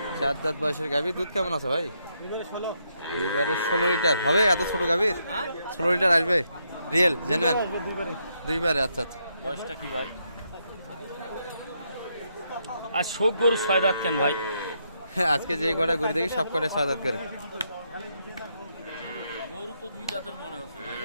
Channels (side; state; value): both; inverted; correlation -0.78